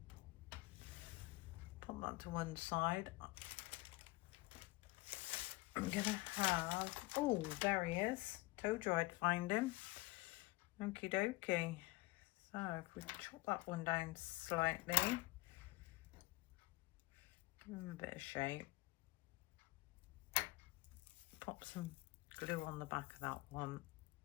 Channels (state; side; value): quieter; right; 21.4 dB